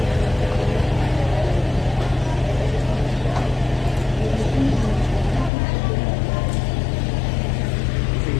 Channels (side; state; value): right; drops out; at 5.5 s